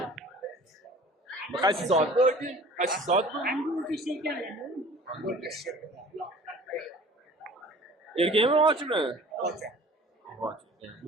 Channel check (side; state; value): both; normal; correlation 0.46